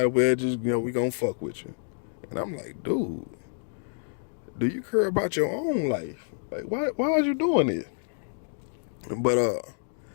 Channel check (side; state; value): right; silent; digital silence